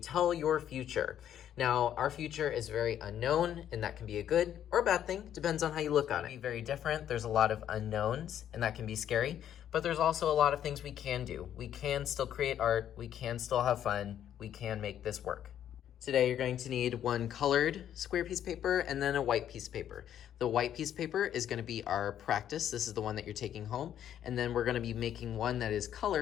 your future. Now, our future is very unknown, and that can be a good or a bad thing. Depends on how you look on it. It can be very different. There's a lot of unknowns, and that can be scary. But there's also a lot of things we can do. We can still create art. We can still have fun. We can make this work. Today, you're going to need one colored square piece of paper and then a white piece of paper. The white piece of paper is going to be our practice. This is the one that you're taking home. And then we're going to be making one that is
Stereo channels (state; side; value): quieter; right; 10.3 dB